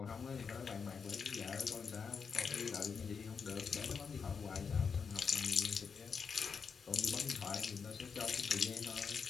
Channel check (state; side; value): quieter; right; 5.9 dB